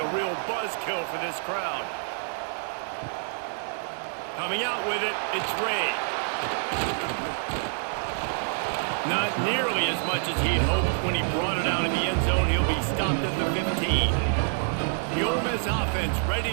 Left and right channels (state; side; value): silent; left; 60 dB below the other